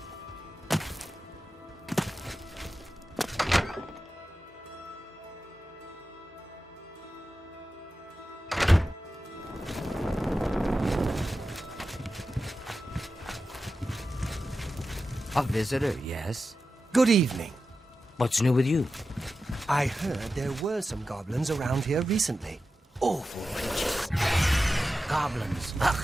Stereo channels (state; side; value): normal; both; correlation 0.92